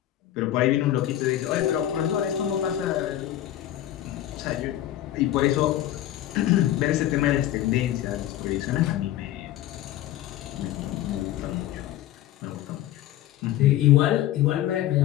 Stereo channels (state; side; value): quieter; right; 13.0 dB